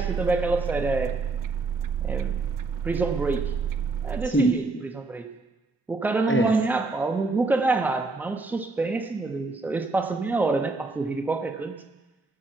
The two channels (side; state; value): left; quieter; 3.5 dB